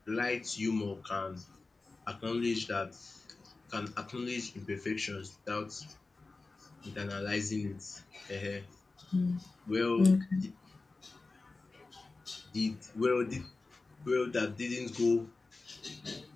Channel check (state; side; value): quieter; right; 3.6 dB